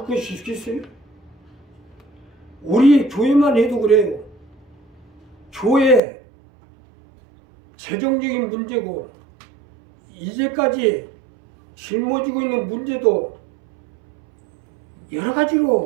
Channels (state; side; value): drops out; left; at 6.0 s